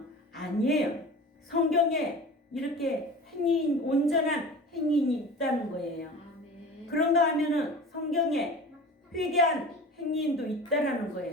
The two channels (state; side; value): normal; both; correlation 0.37